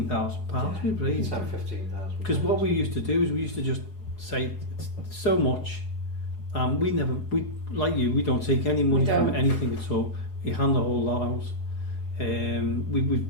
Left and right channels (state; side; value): late; right; 4.8 ms